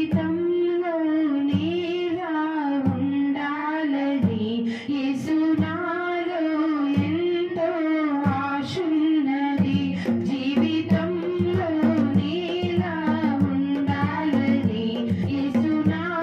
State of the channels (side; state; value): both; identical; correlation 1.00